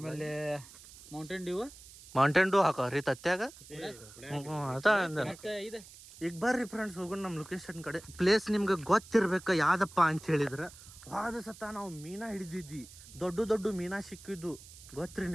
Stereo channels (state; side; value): noise; right; hiss, 19 dB below the sound